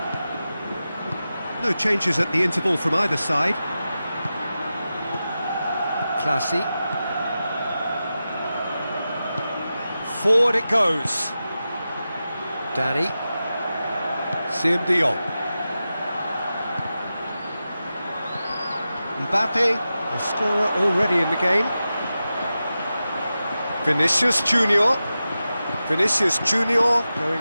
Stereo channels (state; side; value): inverted; both; correlation -0.92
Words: No changes at the interval from either side. Classy. Forward it goes. Danny. Dion. Mbappe, the scorer already in the game. Vinicius Junior. Vinicius Junior